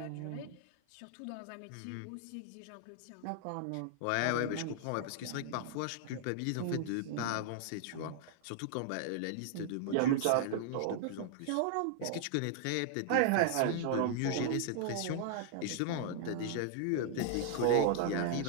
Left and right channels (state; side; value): different; both; correlation -0.01